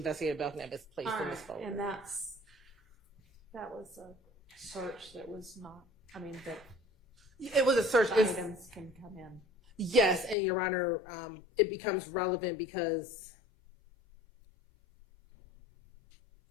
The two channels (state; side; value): drops out; right; at 10.4 s